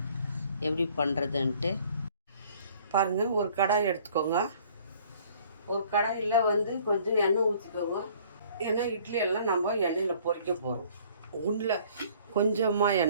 எப்படி பண்ணுறதுன்ட்டு பாருங்கள். ஒரு கடாய் எடுத்துக்கோங்க. ஒரு கடாயில் வந்து கொஞ்சம் எண்ணெய் ஊற்றிக்கோங்க. ஏன்னா இட்லி எல்லாம் நம்ம எண்ணெயில் பொரிக்க போகிறோம். உண்டில் கொஞ்சமாக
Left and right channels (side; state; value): both; inverted; correlation -0.56